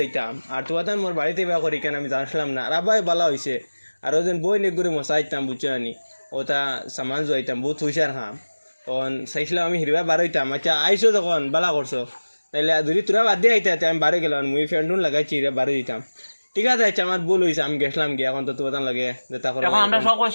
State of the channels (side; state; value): both; inverted; correlation -1.00